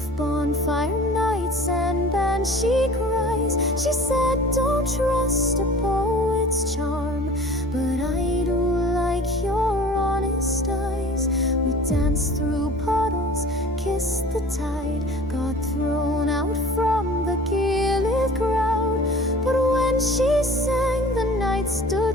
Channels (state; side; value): normal; both; correlation 0.44